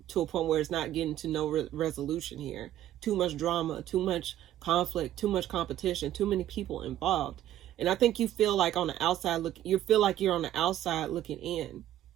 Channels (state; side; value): quieter; left; 12.5 dB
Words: to a point where it's not getting to no resolution here. Too much drama, too much conflict, too much competition, too many people involved. And I think you feel like on the outside you feel like you're on the outside looking in,